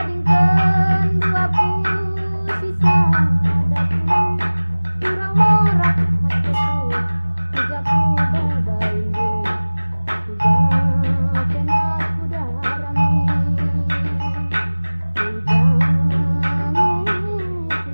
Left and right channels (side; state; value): both; inverted; correlation -1.00